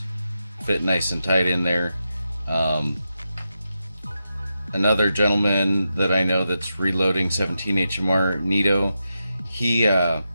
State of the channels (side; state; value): both; inverted; correlation -0.88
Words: fit nice and tight in there. Another gentleman that I know that's reloading 17 HMR, Nito, he